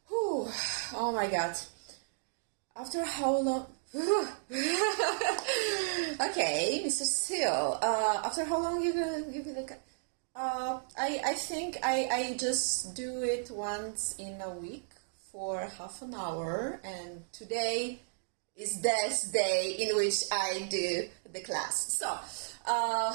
Oh my god. After how long? Okay, Mr. Seal. After how long you gonna give me the? I think I just do it once in a week for half an hour, and today is this day in which I do the class. So,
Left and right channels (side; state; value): left; silent; digital silence